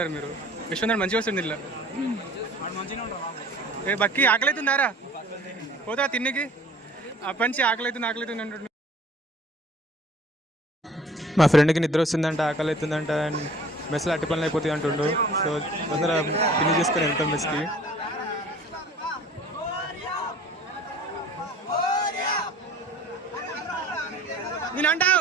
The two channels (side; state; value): both; normal; correlation 0.49